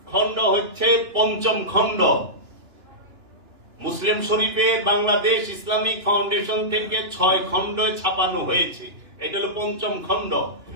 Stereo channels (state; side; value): late; left; 2.9 ms